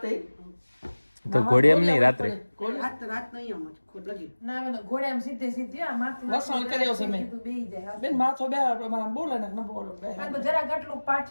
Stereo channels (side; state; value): both; inverted; correlation -1.00